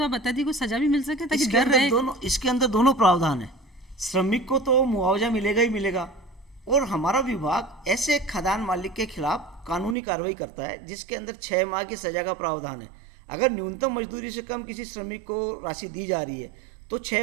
आप बता दी, कोई सजा भी मिल सके ताकि डर रहे। इसके अंदर दोनों प्रावधान है। श्रमिक को तो मुआवजा मिलेगा ही मिलेगा, और हमारा विभाग ऐसे खदान मालिक के खिलाफ कानूनी कार्रवाई करता है जिसके अंदर 6 माह की सजा का प्रावधान है। अगर न्यूनतम मजदूरी से कम किसी श्रमिक को राशि दी जा रही है तो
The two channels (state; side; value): drops out; left; at 10.0 s